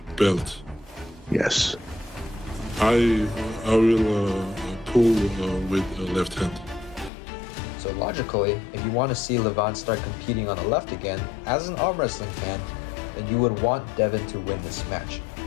belt, Yes. I will pull with left hand. So logically, if you want to see Levon start competing on the left again, as an arm wrestling fan, then you would want Devon to win this match.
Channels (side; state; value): right; drops out; at 7.1 s